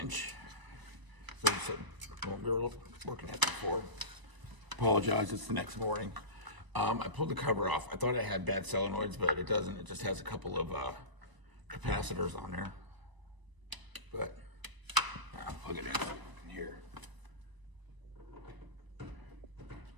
So this is what we were looking at before. Apologize, it's the next morning. I pulled the cover off. I thought it had bad solenoids, but it doesn't. It just has a couple of capacitors on there. But I'll plug it in here.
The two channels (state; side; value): late; left; 1.0 ms